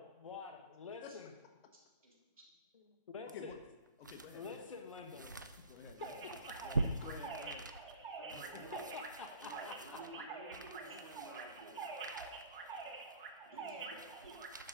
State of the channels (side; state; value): both; inverted; correlation -0.44